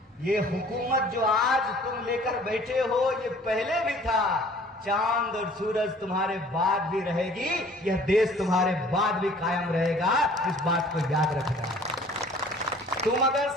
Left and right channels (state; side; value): normal; both; correlation 0.52